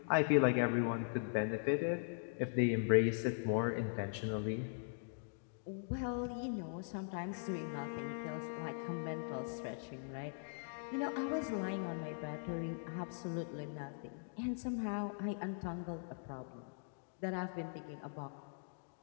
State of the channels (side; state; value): right; silent; digital silence